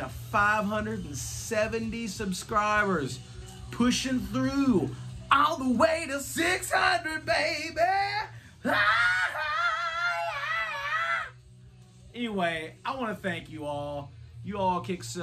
570 subscribers. Pushing through all the way to 600, baby. Anyway, I want to thank you all. You all kick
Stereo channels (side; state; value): both; identical; correlation 1.00